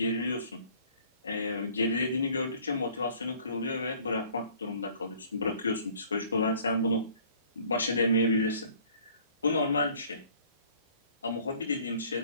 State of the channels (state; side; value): inverted; both; correlation -0.55